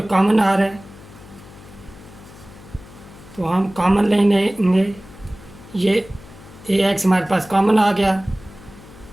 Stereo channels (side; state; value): left; noise; hum, 20 dB below the sound